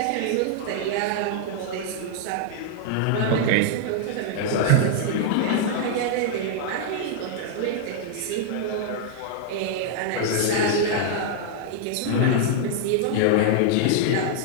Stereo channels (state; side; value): different; both; correlation -0.01